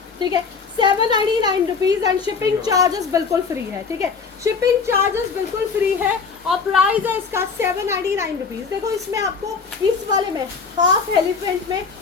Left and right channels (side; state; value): right; quieter; 5.3 dB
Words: ठीक है। 799 रुपीज़ एंड शिपिंग चार्जेस बिल्कुल फ्री है, ठीक है। शिपिंग चार्जेस बिल्कुल फ्री है और प्राइस है इसका 799 रुपीज़। देखो इसमें आपको इस वाले में हाफ एलिफेंट में